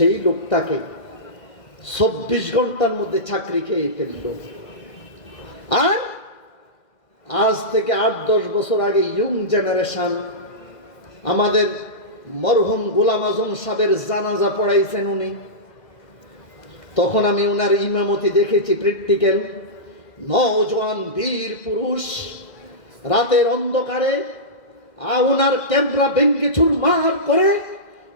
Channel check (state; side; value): late; right; 2.0 ms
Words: লোকটাকে 24 ঘন্টার মধ্যে চাকরি খেয়ে ফেলল। আর আজ থেকে 8-10 বছর আগে ইয়ং জেনারেশন আমাদের মরহুম গোলাম আজম সাহেবের জানাজা পড়াইছেন উনি। তখন আমি ওনার ইমামতি দেখেছি, প্র্যাকটিক্যাল। নওজোয়ান বীর পুরুষ রাতের অন্ধকারে ওনার ক্যামেরা ভেঙ্গে চুরমার করে